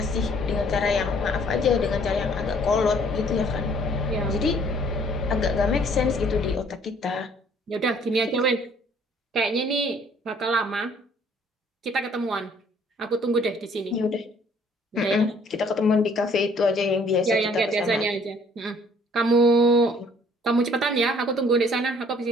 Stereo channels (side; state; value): both; normal; correlation 0.59